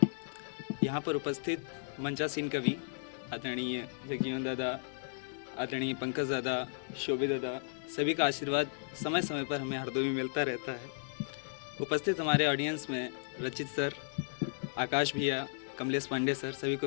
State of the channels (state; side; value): silent; right; digital silence